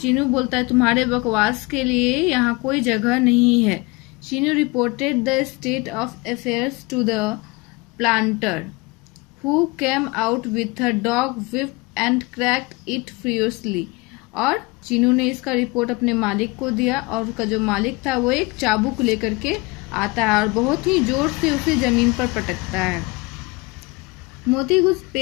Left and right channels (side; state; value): right; quieter; 24.5 dB